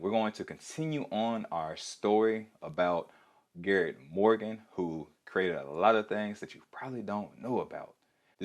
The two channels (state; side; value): identical; both; correlation 1.00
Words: going to continue on our story about Garrett Morgan, who created a lot of things that you probably don't know about.